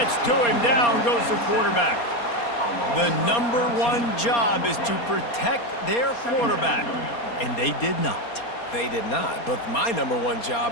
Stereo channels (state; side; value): late; right; 4.2 ms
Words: to him. Down goes the quarterback. The #1 job is to protect their quarterback, and they did not. They did not. But my #1